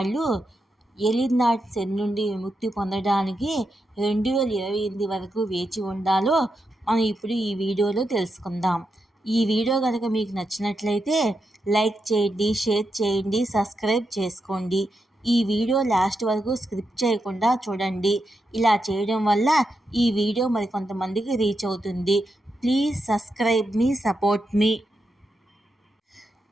ఏలినాటి శని నుండి విముక్తి పొందడానికి 2028 వరకు వేచి ఉండాలో మనం ఇప్పుడు ఈ వీడియోలో తెలుసుకుందాం. ఈ వీడియో కనుక మీకు నచ్చినట్లయితే లైక్ చేయండి, షేర్ చేయండి, సబ్స్క్రైబ్ చేసుకోండి. ఈ వీడియో లాస్ట్ వరకు స్కిప్ చేయకుండా చూడండి. ఇలా చేయడం వల్ల ఈ వీడియో మరికొంతమందికి రీచ్ అవుతుంది. ప్లీజ్ సబ్స్క్రైబ్ మీ, సపోర్ట్ మీ.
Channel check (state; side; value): normal; both; correlation 0.85